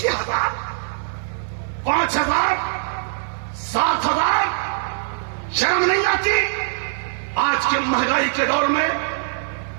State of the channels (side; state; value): left; silent; digital silence